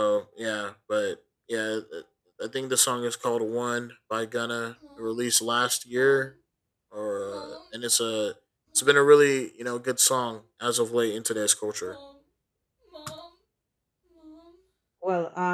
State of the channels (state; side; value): identical; both; correlation 1.00